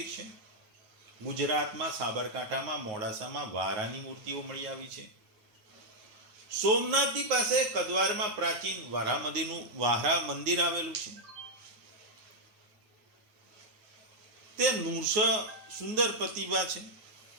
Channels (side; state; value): left; late; 9.4 ms